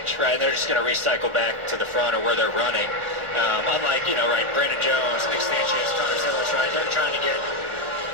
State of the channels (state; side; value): late; left; 1.4 ms